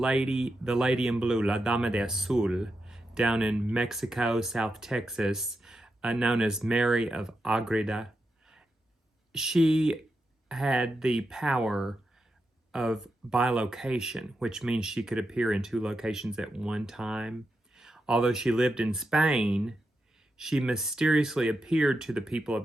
in blue, La Dama de Azul, down in Mexico, South Texas, known as Mary of Agreda, she had the power of bilocation, which means she could appear in 2 locations at one time. Although she lived in Spain, she mysteriously appeared to the people of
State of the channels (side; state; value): both; normal; correlation 0.87